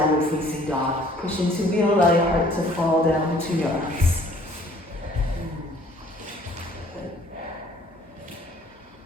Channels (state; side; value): normal; both; correlation 0.56